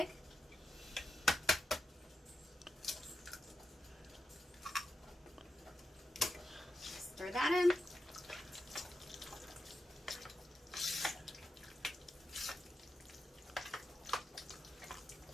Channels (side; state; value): both; normal; correlation 0.88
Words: Stir that in.